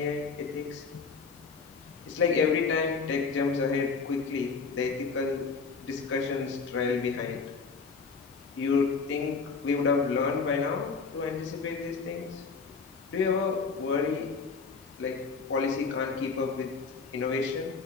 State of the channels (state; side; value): quieter; right; 4.9 dB